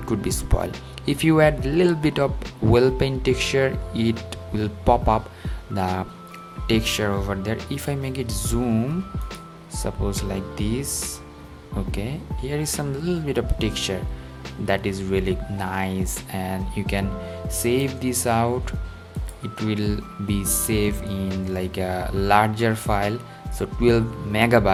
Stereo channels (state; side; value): identical; both; correlation 1.00